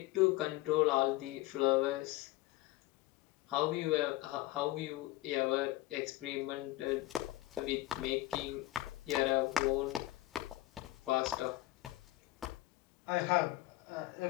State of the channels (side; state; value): right; quieter; 17.8 dB